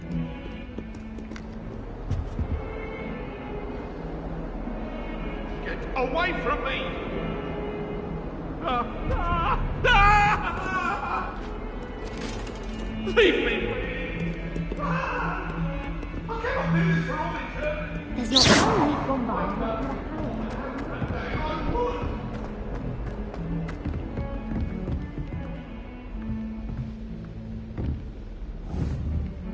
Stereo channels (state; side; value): identical; both; correlation 1.00